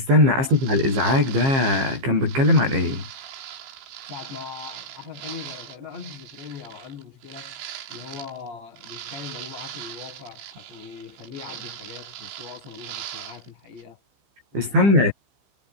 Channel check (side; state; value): left; late; 15 ms